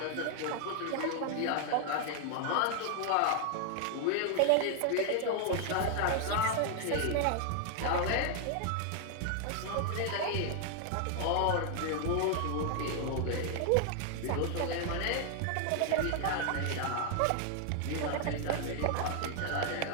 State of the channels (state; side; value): different; both; correlation 0.00